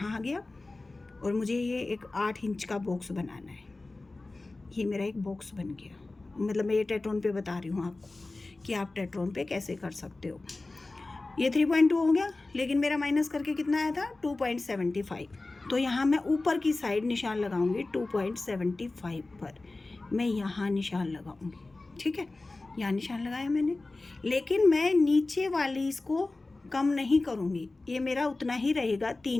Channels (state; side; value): quieter; right; 3.2 dB